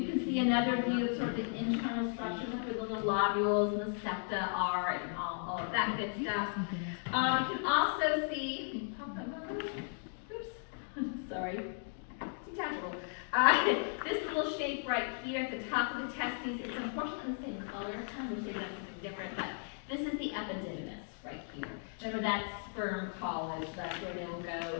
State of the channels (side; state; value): right; silent; 54 dB below the other